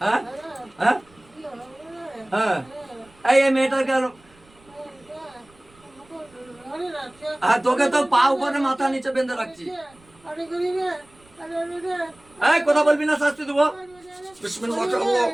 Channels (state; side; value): noise; right; rumble, 29 dB below the sound